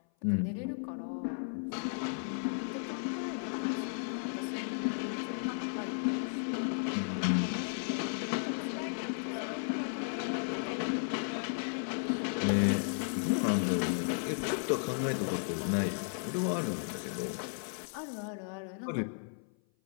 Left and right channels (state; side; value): silent; right; 55 dB below the other